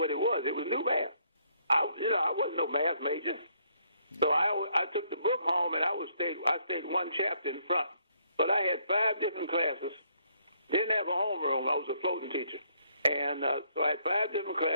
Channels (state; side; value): inverted; both; correlation -0.69